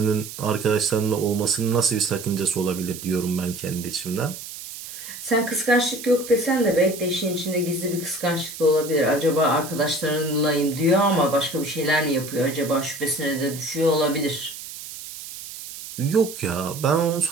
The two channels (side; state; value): right; noise; hiss, 12 dB below the sound